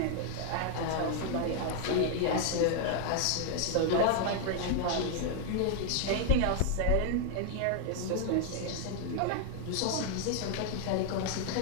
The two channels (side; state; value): both; different; correlation 0.00